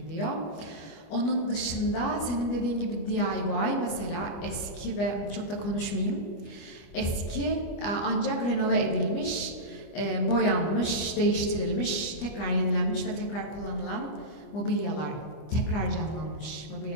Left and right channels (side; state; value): right; late; 25 ms